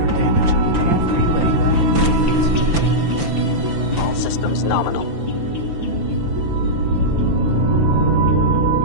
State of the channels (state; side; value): late; left; 5.9 ms